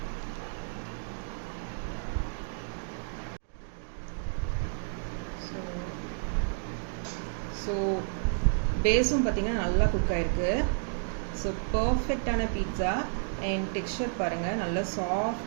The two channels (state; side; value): silent; left; digital silence